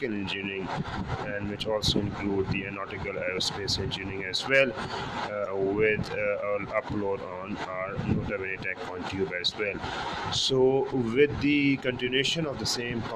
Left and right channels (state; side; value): identical; both; correlation 1.00